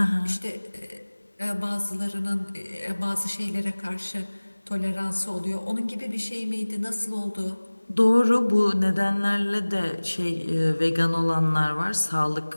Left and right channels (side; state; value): both; inverted; correlation -1.00